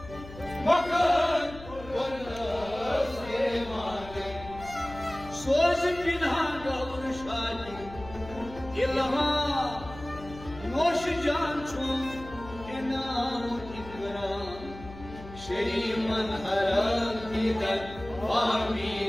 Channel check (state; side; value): noise; left; hum, 15 dB below the sound